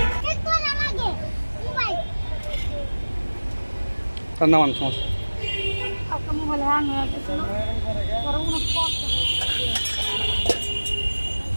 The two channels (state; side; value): inverted; both; correlation -1.00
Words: তার নাম সমস্যা মোবাইল হ্যাং হয়ে গেছিল